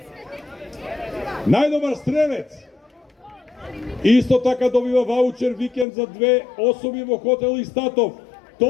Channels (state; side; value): drops out; right; at 5.9 s